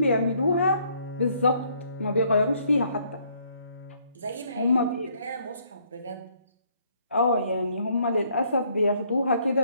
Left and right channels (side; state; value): both; inverted; correlation -0.67